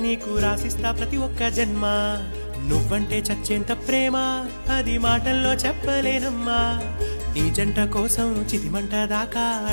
నీకు రాసిస్తా ప్రతి ఒక్క జన్మ. నువ్వంటే చచ్చేంత ప్రేమ అది మాటల్లో చెప్పలేనమ్మా. నీ జంట కోసం చితిమంట దాకా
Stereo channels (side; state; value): both; inverted; correlation -1.00